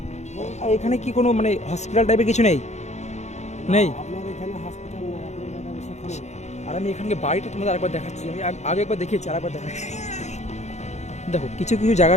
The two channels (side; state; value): right; late; 0.33 ms